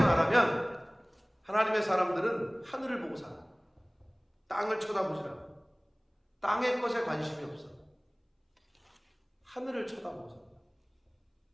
말하면 하나님의 사람들은 하늘을 보고 살아. 땅을 쳐다보지 않아. 땅의 것에 관심이 없어. 하늘을 쳐다보고 살아.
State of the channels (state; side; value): identical; both; correlation 1.00